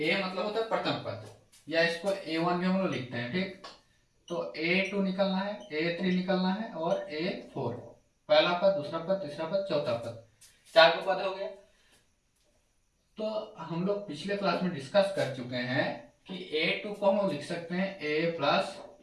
मतलब होता है प्रथम पद, या इसको A1 भी हम लोग लिखते हैं। ठीक, तो A2 निकलना है, A3 निकलना है और A4। पहला पद, दूसरा पद, तीसरा पद, चौथा पद, 4 को पद हो गया। तो हम लोग पिछले क्लास में डिस्कस कर चुके हैं कि A2 को हम लिख सकते हैं A प्लस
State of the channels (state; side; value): identical; both; correlation 1.00